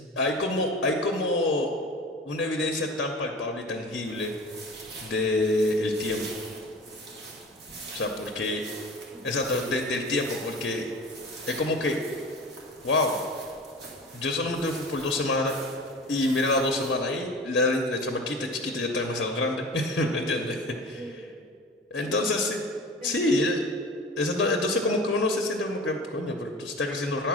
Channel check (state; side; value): normal; both; correlation 0.37